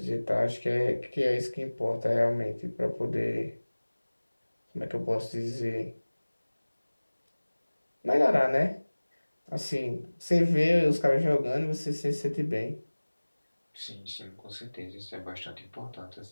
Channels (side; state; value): both; inverted; correlation -1.00